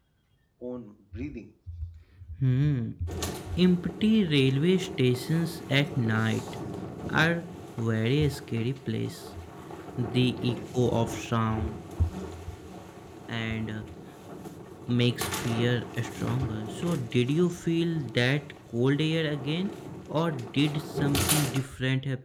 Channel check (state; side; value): identical; both; correlation 1.00